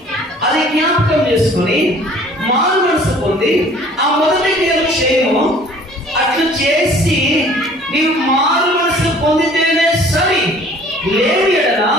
అది జ్ఞాపకం చేసుకొని మారు మనసు పొంది ఆ మొదటి క్రియలు చేయము. అట్లు చేసి నీవు మారు మనసు పొందితేనే సరి. లేని ఎడల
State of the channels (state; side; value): normal; both; correlation 0.52